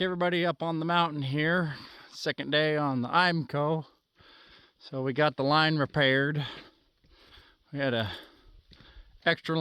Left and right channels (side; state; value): both; identical; correlation 1.00